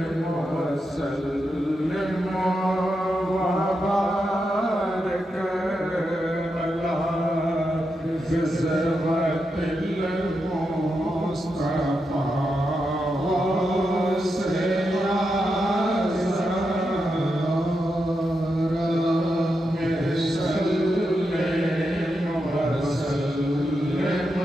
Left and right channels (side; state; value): both; normal; correlation 0.86